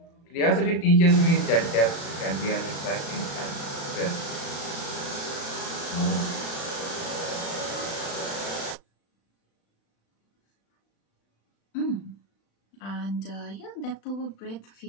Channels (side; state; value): right; late; 35 ms